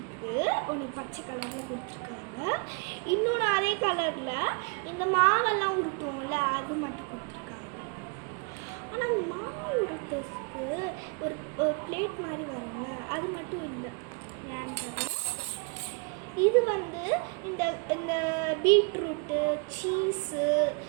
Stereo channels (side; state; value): left; quieter; 35.0 dB